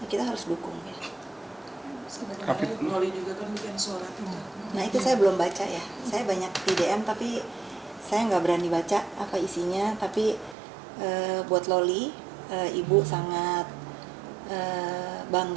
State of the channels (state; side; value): drops out; left; at 10.6 s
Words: kita harus dukung ya. Sebenarnya Loli juga kan bikin surat itu. Nah itu saya belum baca ya, saya banyak di DM tapi saya nggak berani baca apa isinya. Tapi buat Loli, ibu sangat